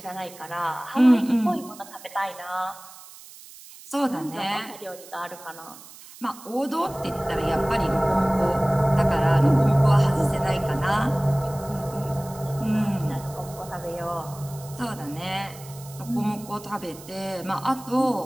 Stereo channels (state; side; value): noise; right; hiss, 19 dB below the sound